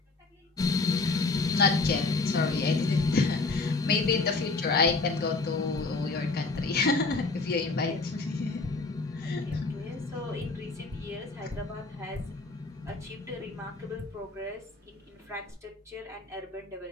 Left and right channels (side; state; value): right; quieter; 3.7 dB